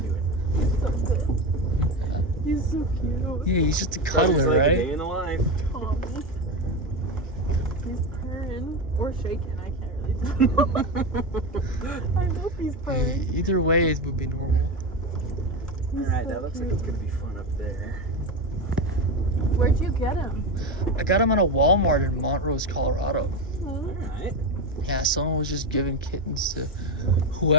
doing? He's so good. He's so cute. Yeah, he's just a It's cuddler, like a right? day in the life. Tommy. He's purring or shaking. I can't really tell. I hope he's purring. Either way, it would be normal. He's All right, so that looks like cute. it's gonna be fun up there. Where'd you get him? I got him at a Walmart in Montrose, Colorado. All right. Yeah, someone was just giving kittens to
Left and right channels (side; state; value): both; normal; correlation 0.17